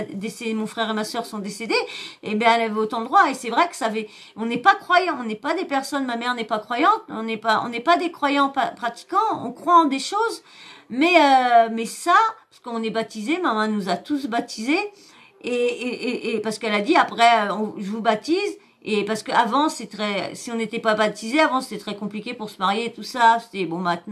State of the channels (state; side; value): identical; both; correlation 1.00